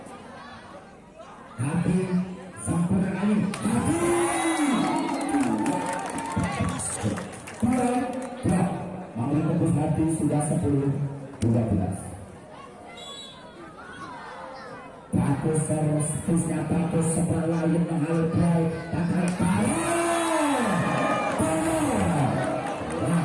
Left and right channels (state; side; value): identical; both; correlation 1.00